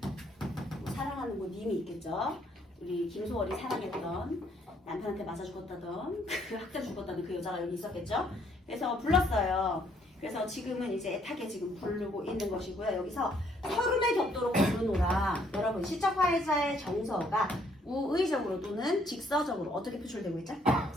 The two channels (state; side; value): normal; both; correlation 0.67